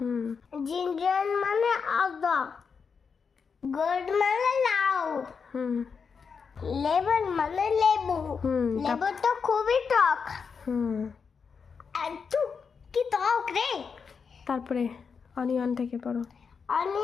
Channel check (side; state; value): right; quieter; 5.8 dB